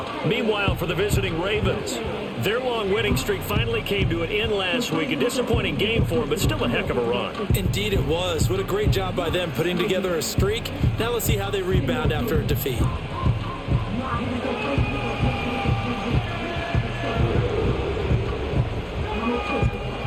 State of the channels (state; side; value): identical; both; correlation 1.00